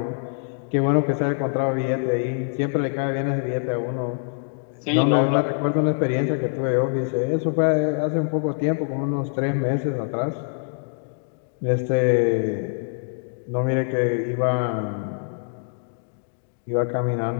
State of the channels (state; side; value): silent; right; digital silence